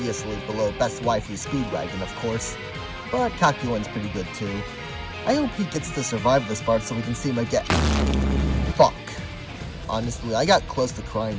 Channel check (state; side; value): identical; both; correlation 1.00